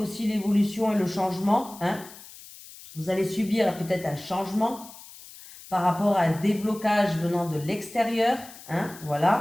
l'évolution et le changement, hein. Vous allez subir peut-être un changement par rapport à un déblocage venant de l'extérieur, hein,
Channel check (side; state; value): left; noise; hiss, 18 dB below the sound